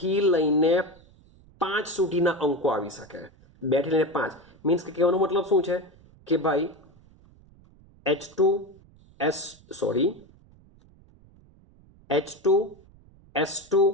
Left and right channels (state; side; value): noise; right; rumble, 27 dB below the sound